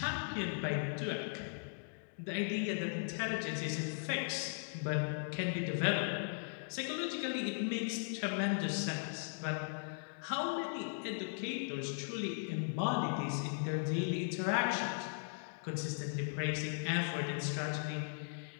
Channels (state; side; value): silent; right; digital silence